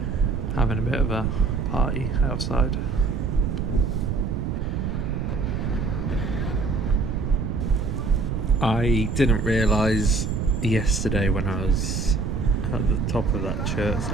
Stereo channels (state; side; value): noise; right; rumble, 2 dB below the sound